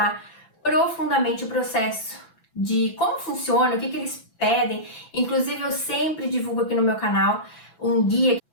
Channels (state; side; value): late; right; 6.0 ms